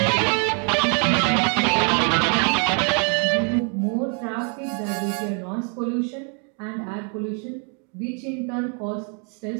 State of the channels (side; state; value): left; quieter; 39.6 dB